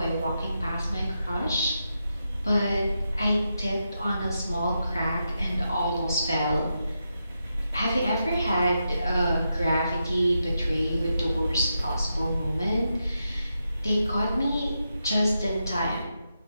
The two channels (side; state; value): both; inverted; correlation -0.86